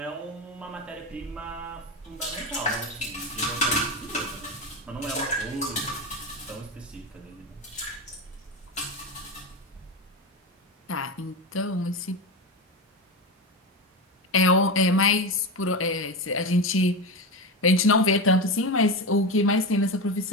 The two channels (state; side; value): normal; both; correlation 0.18